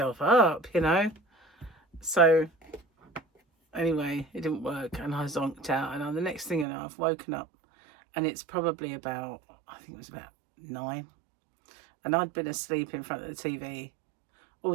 up, you know. So anyway, it didn't work, and I zonked out. And the next thing you know, I've woken up, and it's probably about, I think it was about 9, and I'd been asleep in front of the TV all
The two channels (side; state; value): left; drops out; at 6.7 s